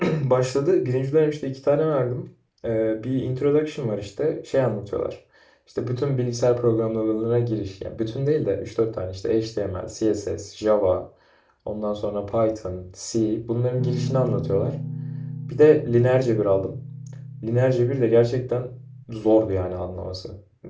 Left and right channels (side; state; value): both; identical; correlation 1.00